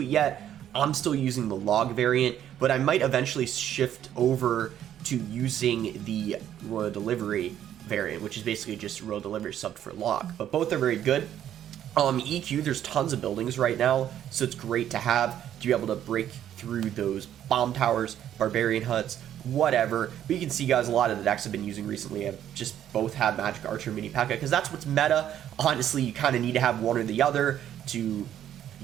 it yet, I'm still using the Log variant, but I might eventually shift over to using the Royal Delivery variant, which is basically just Royal Delivery subbed for Log. But both are very good. EQ, there's tons of buildings right now, so it's great to have to be able to break through those bomb towers, barbarian huts, whatever. But you can see, guys, a lot of the decks I've been using recently have just both had Magic Archer Mini P.E.K.K.A. because that's what's meta. Honestly, you kind of need to have one or the other to,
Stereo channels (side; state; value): left; quieter; 10.8 dB